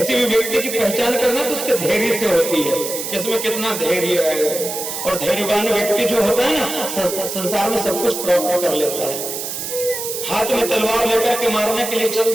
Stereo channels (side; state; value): right; noise; hiss, 5 dB below the sound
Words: भी व्यक्ति की पहचान करना तो उसके धैर्य से होती है, इसमें कितना धैर्य है। और धैर्यवान व्यक्ति जो होता है ना, संसार में सब कुछ प्राप्त कर लेता है। हाथ में तलवार लेकर के मारने के लिए चल